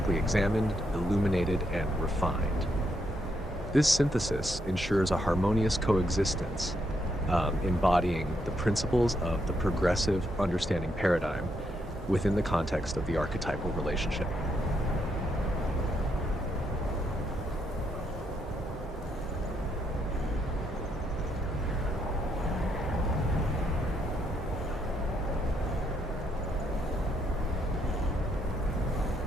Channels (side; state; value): both; normal; correlation 0.77